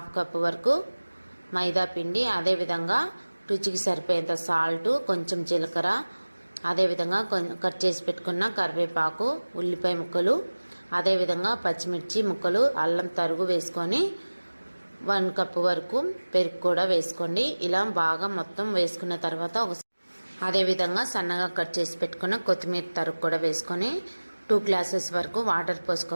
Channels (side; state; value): both; inverted; correlation -1.00